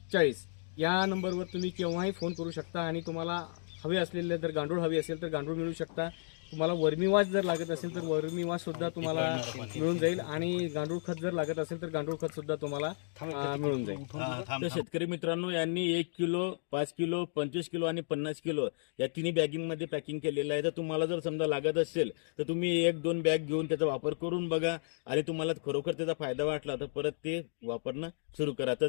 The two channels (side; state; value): right; silent; digital silence